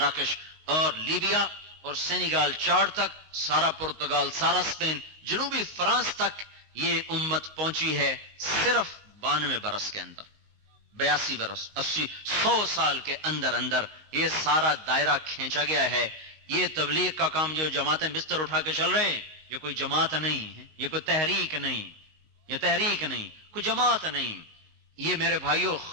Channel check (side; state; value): left; late; 19 ms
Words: اور لیبیا اور سینیگال، چاڈ تک، سارا پرتگال، سارا اسپین، جنوبی فرانس تک یہ امت پہنچی ہے صرف 92 برس کے اندر۔ 82 برس، 80، 100 سال کے اندر اندر یہ سارا دائرہ کھینچا گیا ہے۔ یہ تبلیغ کا کام جو جماعتیں بستر اٹھا کے چل رہے ہیں، یہ کوئی جماعت نہیں ہے، یہ کوئی تحریک نہیں، یہ تحریک نہیں، کوئی جماعت نہیں۔ یہ میرے بھائیوں